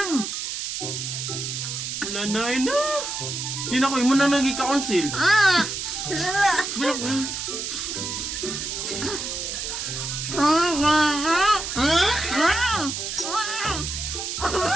9. Nanay na. Di na ko, imo na nag-i-council.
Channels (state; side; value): noise; right; hiss, 4 dB below the sound